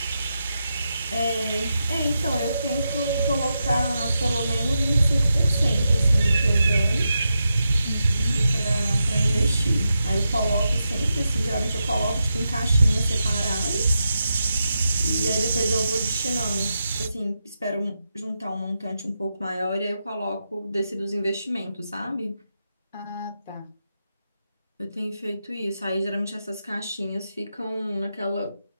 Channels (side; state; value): both; inverted; correlation -0.87